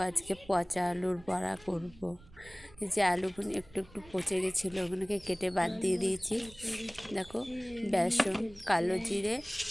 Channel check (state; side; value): noise; right; rumble, 22 dB below the sound